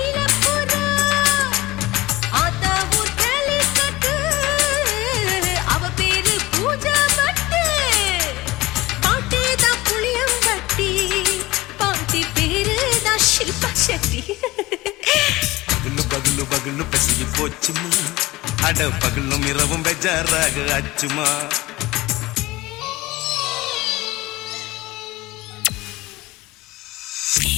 ஆத்தா ஊர் கேலிக்கட்டு அவ பேரு பூஜா பட்டு பாட்டி தான் புளியம்பட்டி பாட்டி பேரு தான் ஷில்பா செட்டி பகலு பகலு பகலு பசிக்கு போச்சுமா அட பகலும் இரவும் பெஜாராக ஆச்சுமா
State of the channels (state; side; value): quieter; right; 18.9 dB